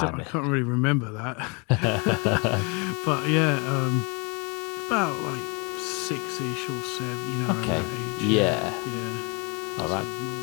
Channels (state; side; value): quieter; right; 32.2 dB